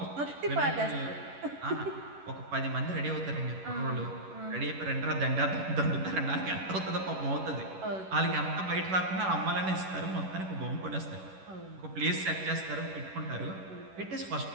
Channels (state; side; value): late; left; 11 ms